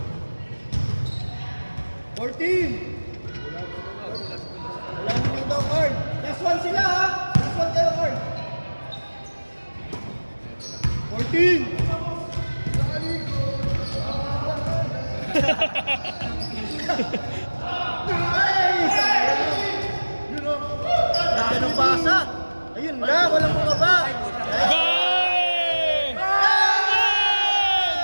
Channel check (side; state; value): both; inverted; correlation -1.00